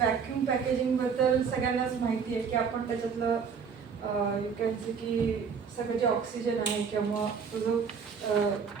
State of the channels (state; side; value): quieter; left; 6.2 dB